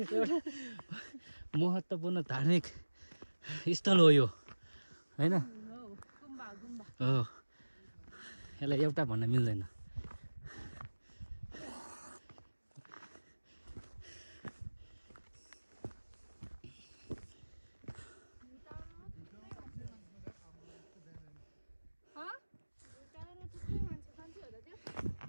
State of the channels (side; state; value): both; inverted; correlation -1.00